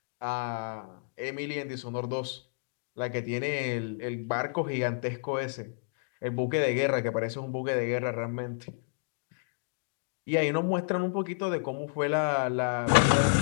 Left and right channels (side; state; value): right; silent; digital silence